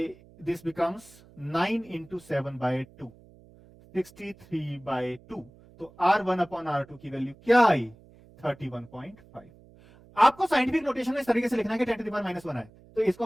दिस बिकम्स 9 इंटू 7/2, 63/2। तो R1 अपॉन R2 की वैल्यू क्या आई, 31.5। आपको साइंटिफिक नोटेशन में इस तरीके से लिखना है कि 10 टू द पावर -1 है, तो इसको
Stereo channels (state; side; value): noise; right; hum, 25 dB below the sound